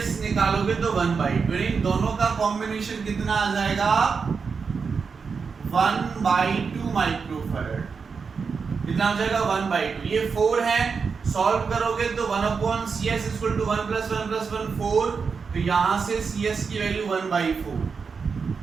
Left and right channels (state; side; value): quieter; left; 5.4 dB